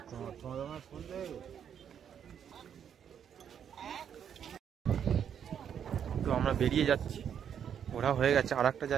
তো আমরা বেরিয়ে যাচ্ছি, ওরা হয়ে গেছে, আর একটা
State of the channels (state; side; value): quieter; left; 8.5 dB